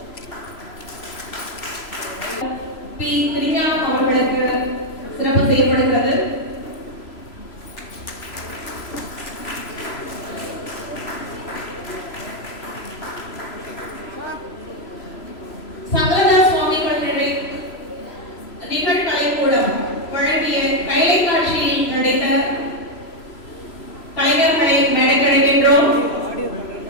பி. திருஞானம் அவர்களுக்கு சிறப்பு செய்யப்படுகிறது. நிகழ்கலைக்கூடம் வழங்கிய கைலை காட்சியில் நடித்த கலைஞர்களை மேடைக்கழைக்கின்றோம்.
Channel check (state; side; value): late; right; 3.0 ms